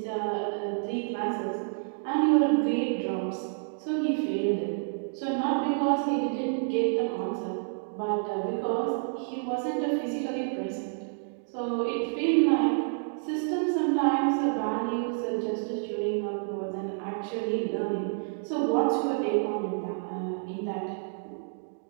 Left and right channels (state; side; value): silent; left; digital silence